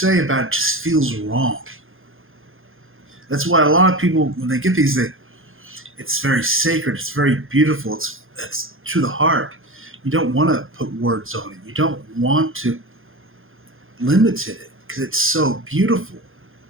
about it just feels wrong. That's why a lot of people, when they get these, it's very sacred. It's very beautiful. It's to the heart. You don't want to put words on it. You don't want to limit it because it's so beautiful.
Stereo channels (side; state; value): left; late; 0.60 ms